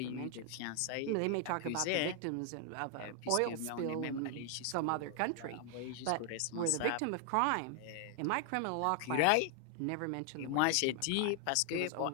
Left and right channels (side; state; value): both; different; correlation 0.00